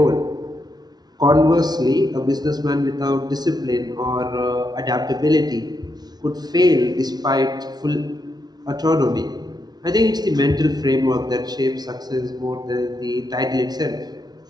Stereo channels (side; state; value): left; late; 0.19 ms